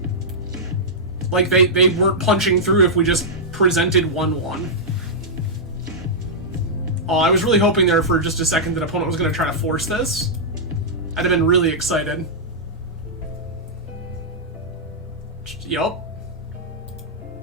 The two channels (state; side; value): normal; both; correlation -0.10